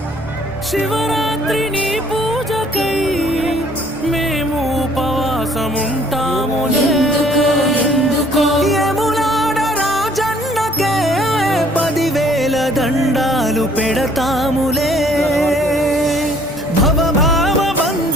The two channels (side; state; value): both; normal; correlation 0.59